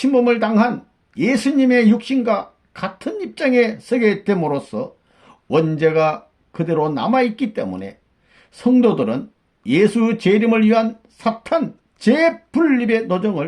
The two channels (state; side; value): identical; both; correlation 1.00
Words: 당한 예수님의 육신과 같은 입장에 서게 됨으로써 원죄가 그대로 남아있기 때문에 성도들은 예수 재림을 위한 사탄 재분립의